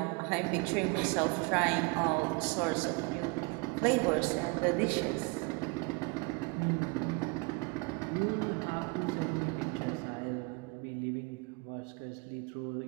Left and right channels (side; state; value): left; quieter; 28.5 dB